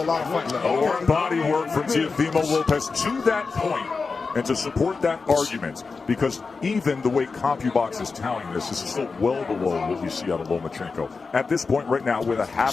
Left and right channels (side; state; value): right; quieter; 4.5 dB